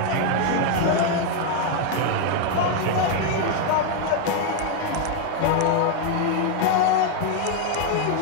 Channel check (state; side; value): different; both; correlation 0.01